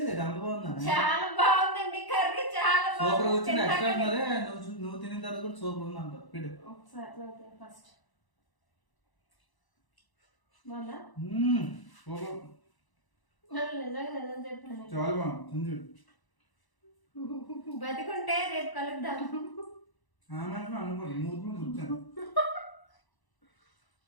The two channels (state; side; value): late; right; 1.0 ms